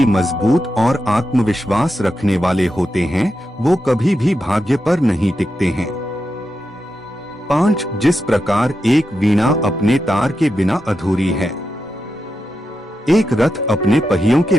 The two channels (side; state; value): both; normal; correlation 0.88